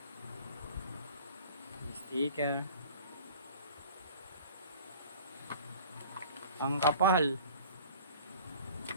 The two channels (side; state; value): both; inverted; correlation -0.45